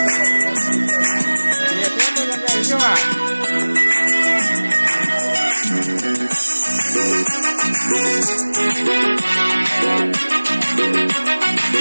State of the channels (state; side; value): inverted; both; correlation -1.00